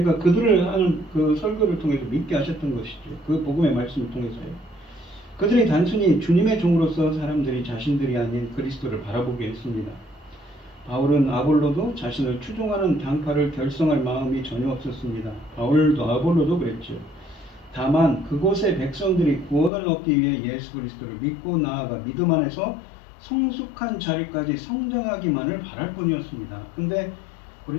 그들을 하는 그 설교를 통해서 믿게 하셨던 것이죠. 그 복음의 말씀을 통해서요. 그들이 단순히 주님의 종으로서 사람들이 자신들이 아닌 그리스도를 바라보게 했습니다. 바울은 아볼로도 자신을 추종하는 당파를 결성할 마음이 전혀 없었습니다. 바울도 아볼로도 그랬죠. 다만 그곳의 백성들이 구원을 얻기 위해 예수 그리스도를 믿고 나아가 믿음 안에서 성숙한 자리까지 성장하기만을 바랄 뿐이었습니다. 근데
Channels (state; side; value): drops out; right; at 19.7 s